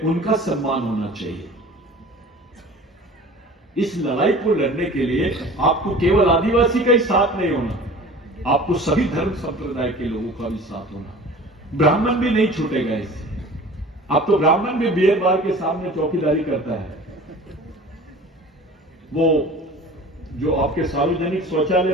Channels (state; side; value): normal; both; correlation 0.42